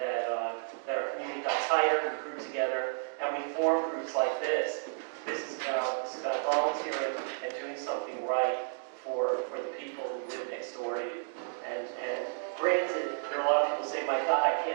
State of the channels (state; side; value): silent; left; digital silence